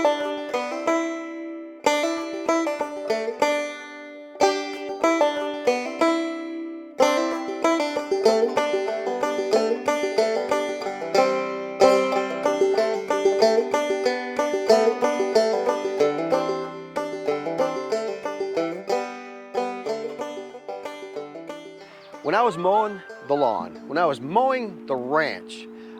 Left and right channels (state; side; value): identical; both; correlation 1.00